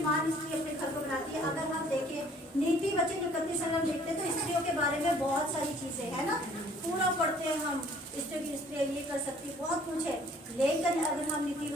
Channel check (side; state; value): both; normal; correlation 0.56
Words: स्त्री अपने घर को बनाती है? अगर हम देखें नीति वचन 31 अगर हम देखते हैं तो स्त्रियों के बारे में बहुत सारी चीजें है ना, पूरा पढ़ते हैं हम, स्त्रियाँ ये कर सकती है, बहुत कुछ है। लेकिन अगर हम नीति